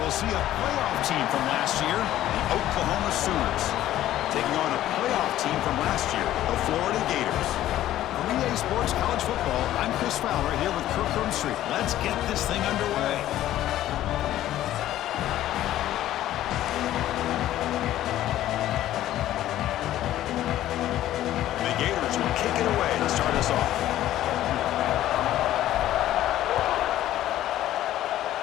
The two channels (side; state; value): right; quieter; 13.4 dB